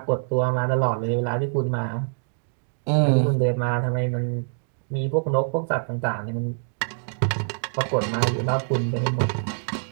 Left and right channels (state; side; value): silent; left; digital silence